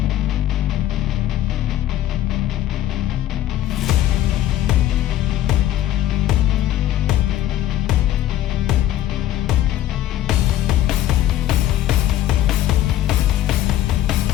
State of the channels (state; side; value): quieter; right; 12.7 dB